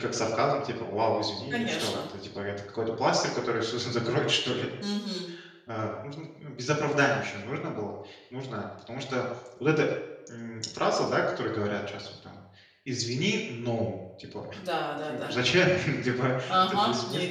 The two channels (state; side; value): identical; both; correlation 1.00